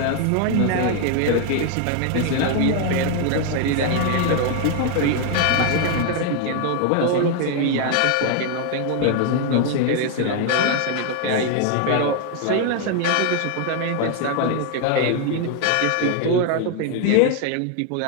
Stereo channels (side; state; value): both; different; correlation 0.00